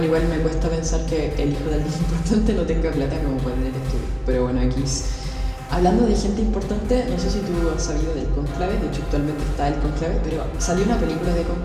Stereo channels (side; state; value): both; identical; correlation 1.00